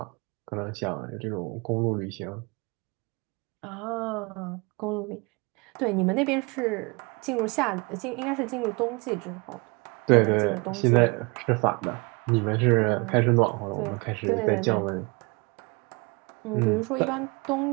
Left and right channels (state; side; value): quieter; left; 28.7 dB